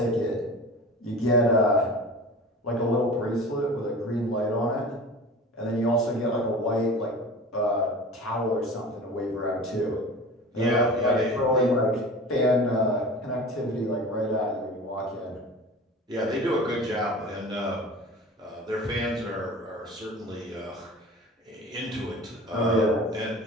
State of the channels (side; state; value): both; normal; correlation 0.37